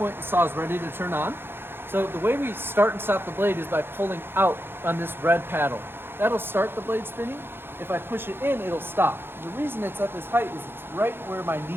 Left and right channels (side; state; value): left; late; 0.10 ms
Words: the saw is ready to turn on. So the way we start and stop the blade is by pulling out on this red paddle. That'll start the blade spinning. If I push it in, it'll stop. The reason it's at this height is it's right where my